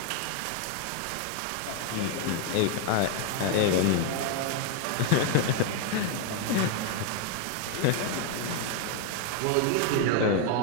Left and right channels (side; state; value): both; different; correlation 0.01